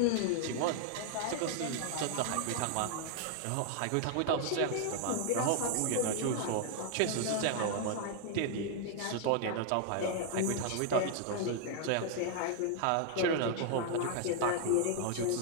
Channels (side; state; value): both; different; correlation 0.00